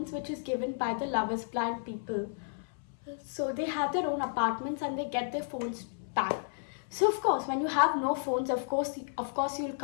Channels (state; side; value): silent; right; 56 dB below the other